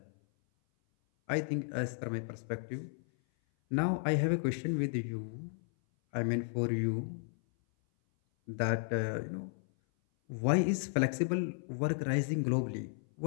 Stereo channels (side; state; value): right; silent; 55 dB below the other